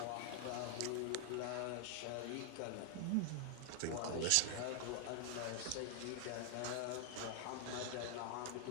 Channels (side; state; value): both; different; correlation 0.00